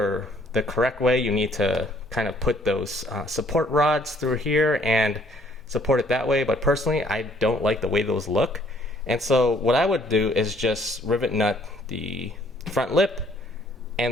the correct way, you need to kind of put those support rods through here and support it that way. But personally, I don't like the way those look. And so what I would do is just rivet nut the front lip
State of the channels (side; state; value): both; normal; correlation 0.62